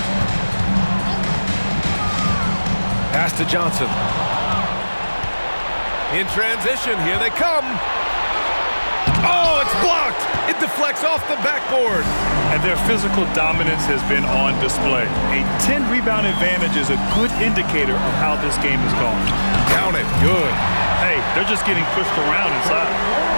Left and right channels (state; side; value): inverted; both; correlation -1.00